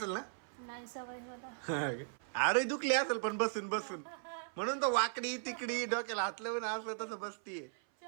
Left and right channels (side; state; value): left; silent; 53 dB below the other